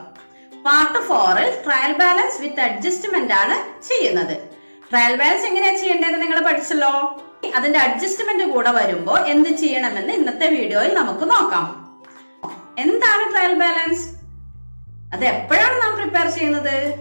പാർട്ട് 4ൽ ട്രയൽ ബാലൻസ് വിത്ത് അഡ്ജസ്റ്റ്മെന്റ് ആണ് ചെയ്യുന്നത്. ട്രയൽ ബാലൻസ് എങ്ങനെയാണ് ചെയ്യേണ്ടതെന്ന് നിങ്ങൾ പഠിച്ചല്ലോ. അതിന്റെ അഡ്ജസ്റ്റ്മെന്റ് കൂടെ വരുമ്പോൾ എന്ത് ചെയ്യണമെന്ന് ഇന്നത്തെ വീഡിയോയിൽ നമുക്ക് നോക്കാം. എന്താണ് ട്രയൽ ബാലൻസ്? അത് എപ്പോഴാണ് നാം പ്രിപ്പയർ ചെയ്യുന്നത്?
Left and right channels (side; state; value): both; inverted; correlation -1.00